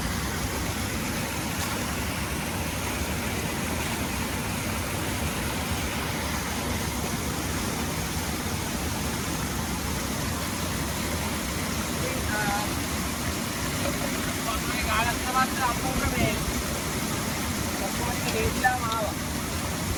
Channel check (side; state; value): both; identical; correlation 1.00